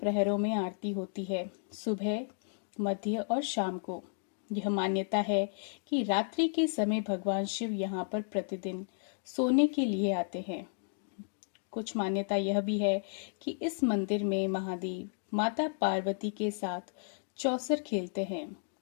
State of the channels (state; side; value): silent; right; digital silence